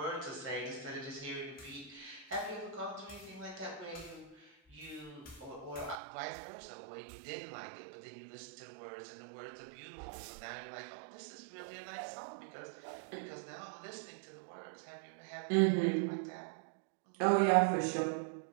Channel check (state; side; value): drops out; left; at 6.0 s